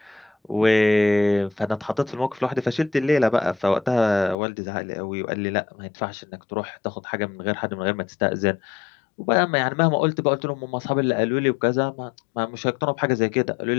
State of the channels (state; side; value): drops out; right; at 4.4 s